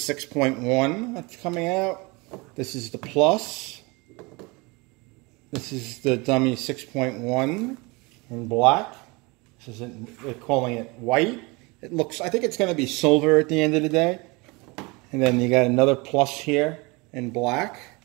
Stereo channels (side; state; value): left; quieter; 26.4 dB